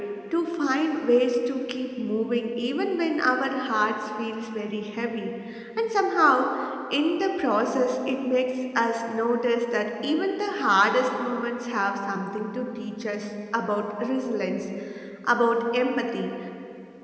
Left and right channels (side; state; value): both; identical; correlation 1.00